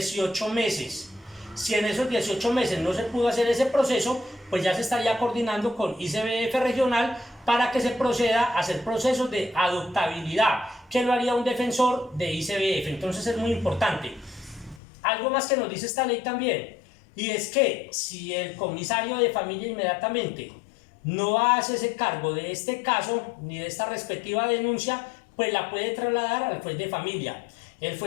meses. Si en esos 18 meses no se pudo hacer ese proceso, pues ya se estaría coordinando con ICBF regional para que se proceda a hacer procesos de adoptabilidad, que lo haría un defensor de ICBF. Entonces es muy importante. Algo más que nos dice esta ley también, y es que si el comisario de familia inmediatamente no hace ese cargo de este caso ni de esta respectiva denuncia, pues la puede trasladar al juez de familia. El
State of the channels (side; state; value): right; drops out; at 14.8 s